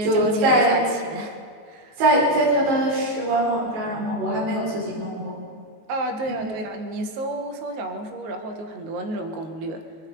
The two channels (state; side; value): late; left; 19 ms